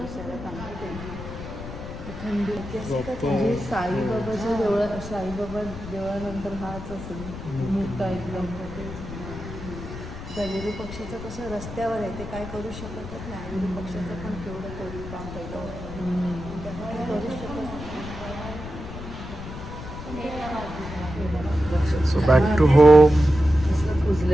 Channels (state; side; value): noise; left; rumble, 10 dB below the sound